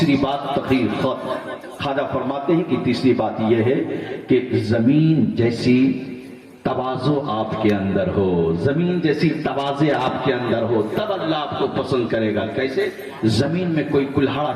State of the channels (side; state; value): both; identical; correlation 1.00